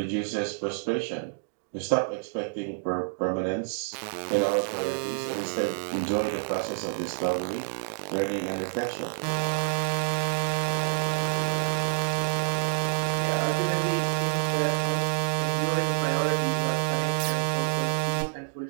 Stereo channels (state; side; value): silent; left; digital silence